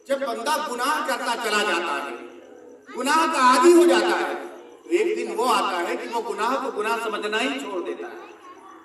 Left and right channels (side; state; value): both; identical; correlation 1.00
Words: جب بندہ گناہ کرتا چلا جاتا ہے, گناہ کا عادی ہو جاتا ہے, تو ایک دن وہ آتا ہے کہ وہ گناہ کو گناہ سمجھنا ہی چھوڑ دیتا ہے.